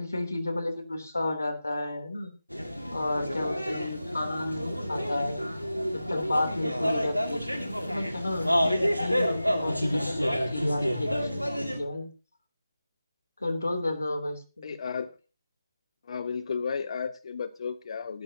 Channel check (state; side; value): inverted; both; correlation -0.93